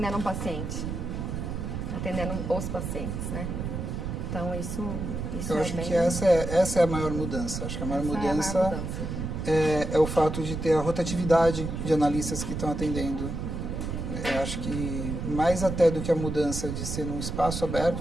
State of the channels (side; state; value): right; noise; rumble, 4 dB below the sound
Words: um paciente. Atendendo os pacientes, né? Então, isso eu acho que essa é a maior mudança. Acho que a maior mudança é o fato de ter a rotatividade de analistas que estão atendendo. Eu acho que mais até do que a mudança de ser num espaço